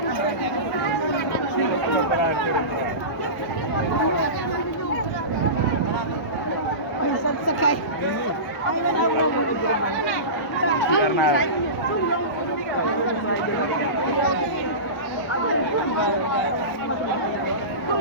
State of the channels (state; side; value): late; right; 1.0 ms